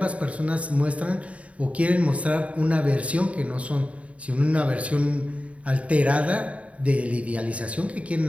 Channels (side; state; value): left; late; 0.065 ms